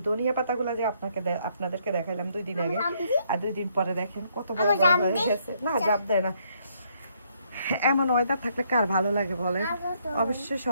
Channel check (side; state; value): both; inverted; correlation -0.71